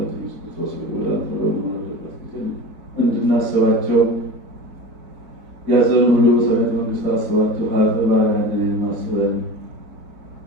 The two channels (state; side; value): late; left; 4.3 ms